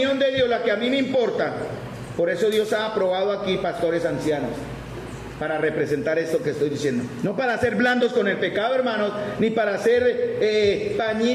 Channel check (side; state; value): both; identical; correlation 1.00